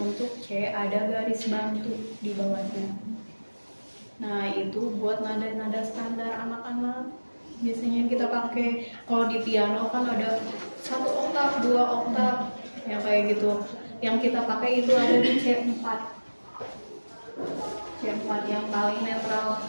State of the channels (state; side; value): inverted; both; correlation -1.00